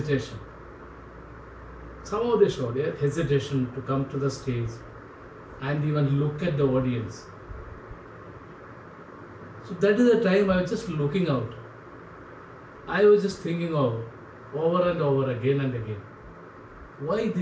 Somehow they showed a hesitation to come to the stage and even look at the audience. So that is the time I was just looking out. I was just thinking of over and over again and again. Why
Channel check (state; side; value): identical; both; correlation 1.00